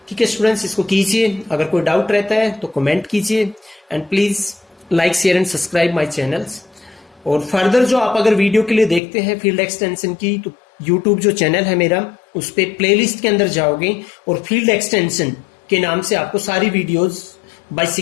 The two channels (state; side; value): drops out; right; at 9.0 s